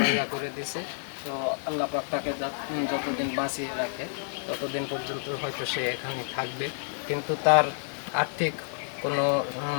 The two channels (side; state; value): right; silent; digital silence